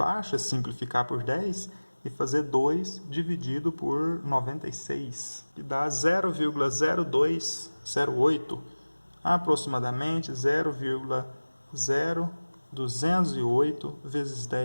simplificar por 10 e fazer 2 dividido por 96, que dá 0,0208, aproximadamente 0,0208 vezes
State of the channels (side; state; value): both; inverted; correlation -1.00